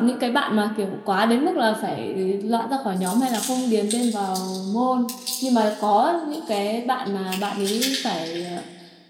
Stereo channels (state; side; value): identical; both; correlation 1.00